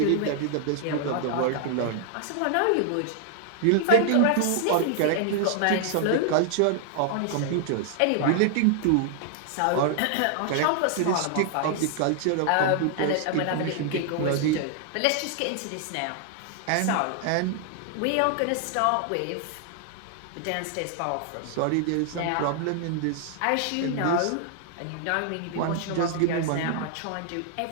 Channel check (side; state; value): both; different; correlation 0.00